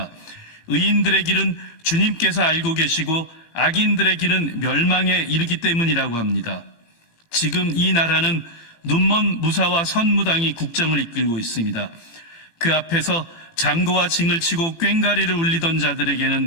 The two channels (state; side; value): late; right; 18 ms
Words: 의인들의 길은 주님께서 알고 계시고 악인들의 길은 멸망에 이르기 때문이라고 합니다. 지금 이 나라는 눈먼 무사와 선무당이 국정을 이끌고 있습니다. 그 앞에서 장구와 징을 치고 꽹과리를 울리던